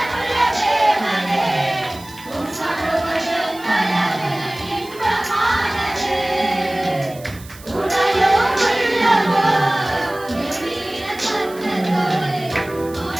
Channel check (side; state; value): right; noise; hiss, 20 dB below the sound